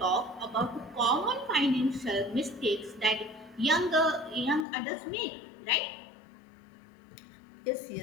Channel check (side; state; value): right; drops out; at 4.7 s